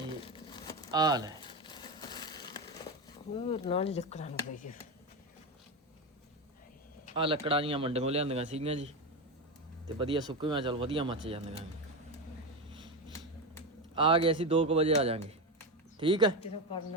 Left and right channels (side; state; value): both; normal; correlation 0.15